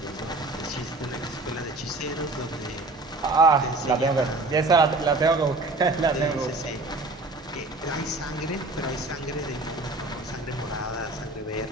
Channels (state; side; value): quieter; left; 3.0 dB